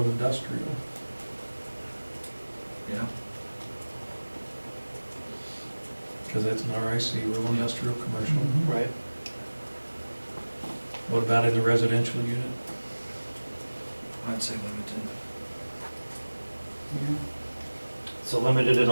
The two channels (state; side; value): inverted; both; correlation -1.00